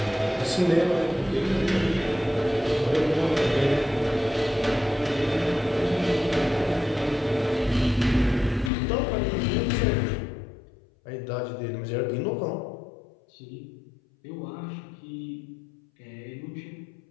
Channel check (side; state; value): right; drops out; at 8.7 s